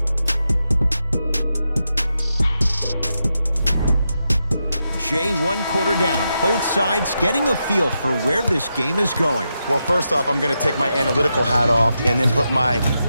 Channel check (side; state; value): both; inverted; correlation -0.86